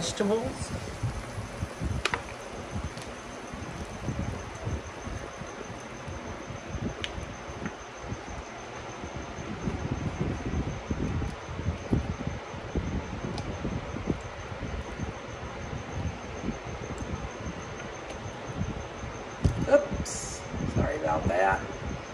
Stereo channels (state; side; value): identical; both; correlation 1.00